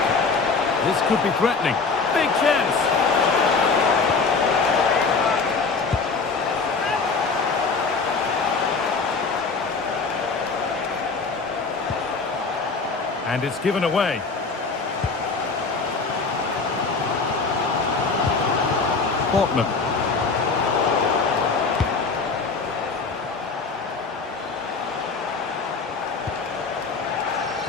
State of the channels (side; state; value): right; quieter; 4.5 dB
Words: This could be threatening. Big chance. And it's given away. Portman.